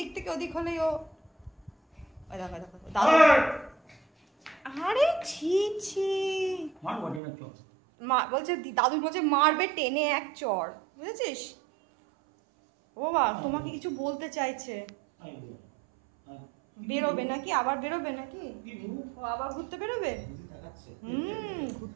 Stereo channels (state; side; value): drops out; left; at 7.2 s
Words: থেকে ওদিক হলেই ও দেখো দেখো দাদু। আরে ছি ছি, বলছে দাদু বলছে মারবে টেনে এক চর, বুঝেছিস? ও বাবা তোমাকে কিছু বলতে চাইছে। বেরোবে নাকি? আবার বেরোবে নাকি? ও আবার ঘুরতে বেরোবে?